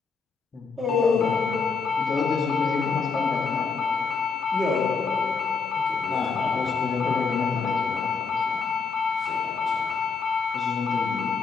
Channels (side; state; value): right; quieter; 5.1 dB